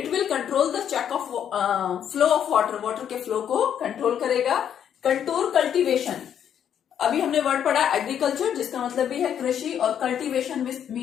will control the check of flow of water के फ्लो को कंट्रोल करेगा। कंटूर कल्टीवेशन, अभी हमने वर्ड पढ़ा एग्रीकल्चर, जिसका मतलब भी है कृषि, और कल्टीवेशन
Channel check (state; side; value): quieter; right; 9.1 dB